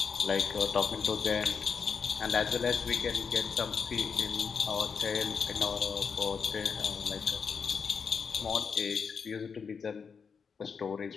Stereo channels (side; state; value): right; quieter; 5.9 dB